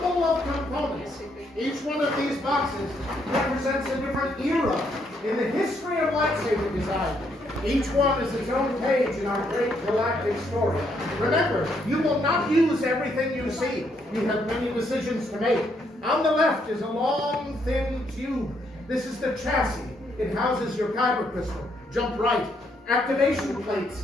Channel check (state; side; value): normal; both; correlation 0.73